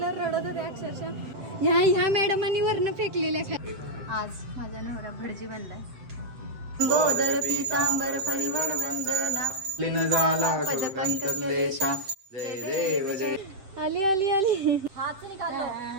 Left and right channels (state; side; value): late; left; 7.5 ms